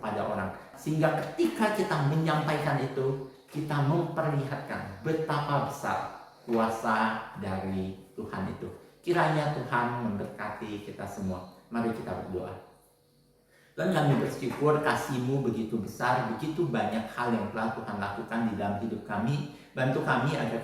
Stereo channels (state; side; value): identical; both; correlation 1.00